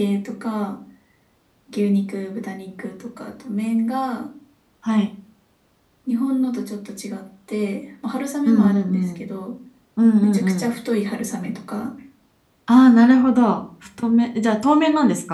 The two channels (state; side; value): identical; both; correlation 1.00